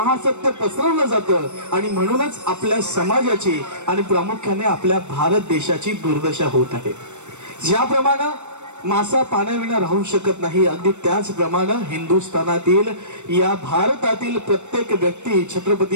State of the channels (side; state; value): left; late; 0.84 ms